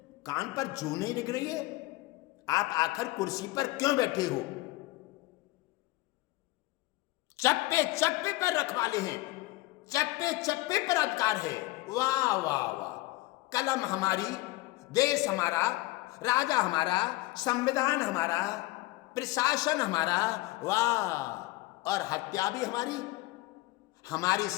कान पर जू नहीं लग रही है। आप आखिर कुर्सी पर क्यों बैठे हो? चप्पे चप्पे पर रखवाले हैं, चप्पे चप्पे पर अधिकार है। वाह वाह वाह, कलम हमारी, देश हमारा, राजा हमारा, संविधान हमारा, प्रशासन हमारा, वाह, और हत्या भी हमारी, हमारी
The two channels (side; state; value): right; quieter; 19.9 dB